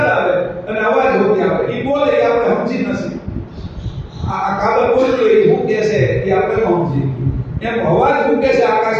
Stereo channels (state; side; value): identical; both; correlation 1.00